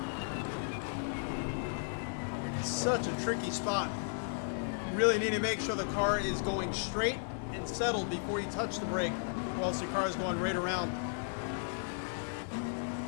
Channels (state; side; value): silent; right; digital silence